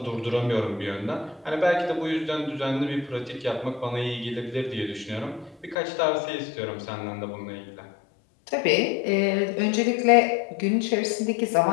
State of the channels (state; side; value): drops out; right; at 5.8 s